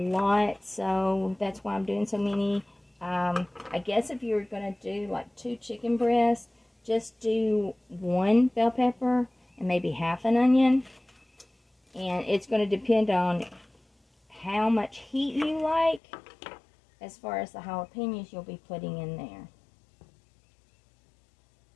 so that's why I'm doing so many. I guess if you were going to do like 2 chicken breasts, just do 1 bell pepper and maybe half an onion. And it's going to depend on how much heat you like as far as the jalapenos you'll be putting in there.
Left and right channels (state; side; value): drops out; right; at 16.0 s